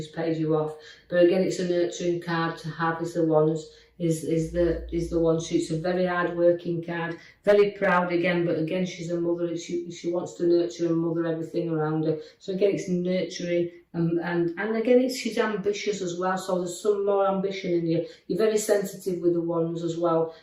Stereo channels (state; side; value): identical; both; correlation 1.00